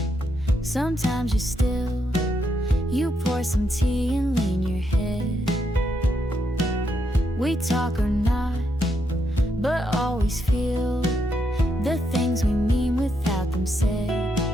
sometimes you're still. You pour some tea and lean your head. We talk or not, but always feel the things we mean without them said.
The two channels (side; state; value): both; normal; correlation 0.79